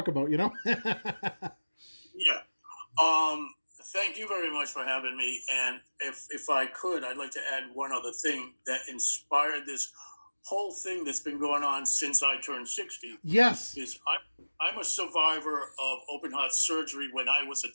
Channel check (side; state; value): both; inverted; correlation -1.00